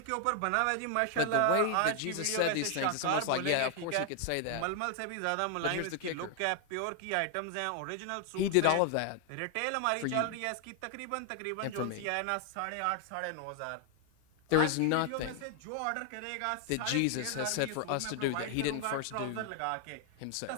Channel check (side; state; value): both; different; correlation 0.00